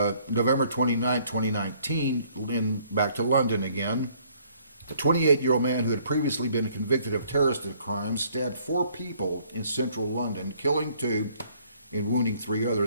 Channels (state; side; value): inverted; both; correlation -0.62